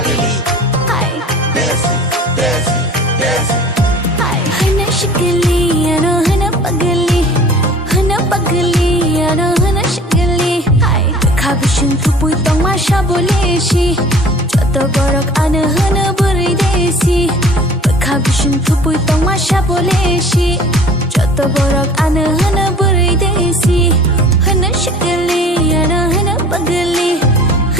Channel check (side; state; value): both; normal; correlation 0.46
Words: हाय Desi, Desi, Desi. हाय हना शिकली अना हना पगली अना हना शिकली हाय खाबिशन थुपुई तong masha boleshi joto borok ana hana burai desi खाबिशन थुपुई तong masha boleshi joto borok ana hana burai desi hana शिकली अना हना पगली